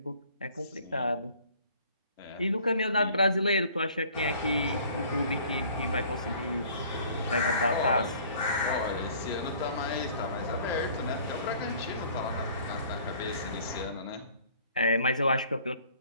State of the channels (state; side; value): inverted; both; correlation -0.54